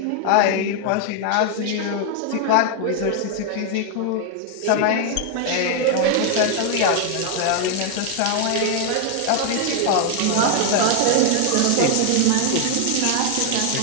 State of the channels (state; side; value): different; both; correlation 0.00